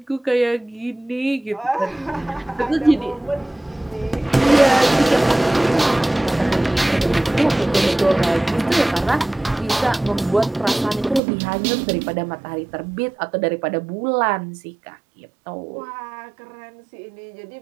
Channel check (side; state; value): left; drops out; at 11.2 s